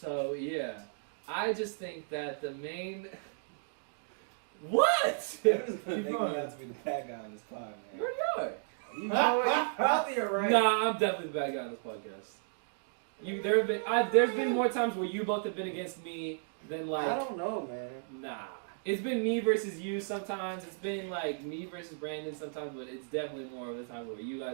yeah, I just think that the main. What? that doesn't make me out to be the bad guy on this pod, man. Where you are? You know what? You probably are right. Nah, I'm definitely the bad guy on this podcast. There's been more times where you both have been against me than like. I don't know, man. Nah. It's been me versus you sometimes. It's been like me versus Brandon sometimes, but it's definitely more of the time where you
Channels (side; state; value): left; silent; digital silence